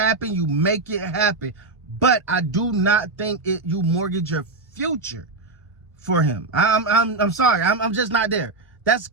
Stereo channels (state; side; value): quieter; left; 3.5 dB